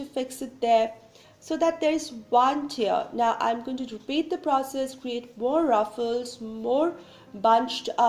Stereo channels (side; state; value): both; identical; correlation 1.00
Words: fix it there so that there is one tier. Now I'm going to repeat the process, create more ruffles, more bunched